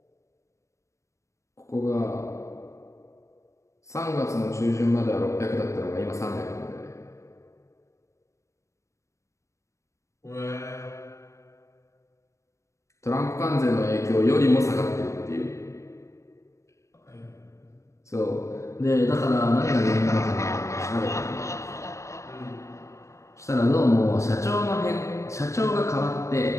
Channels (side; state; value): right; late; 0.15 ms